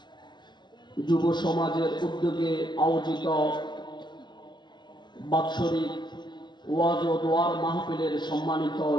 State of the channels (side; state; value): right; late; 0.21 ms